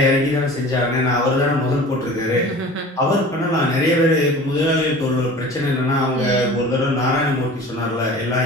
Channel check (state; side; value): normal; both; correlation 0.41